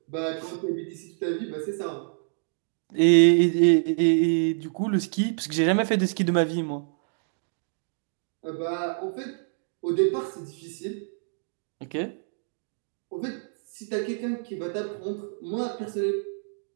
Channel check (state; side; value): silent; left; digital silence